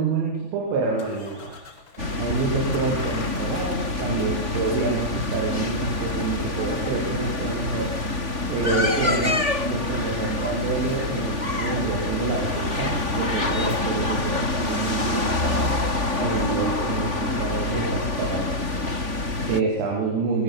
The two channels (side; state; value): left; late; 3.5 ms